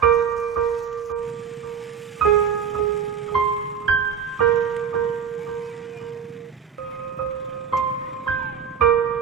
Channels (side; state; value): left; quieter; 7.3 dB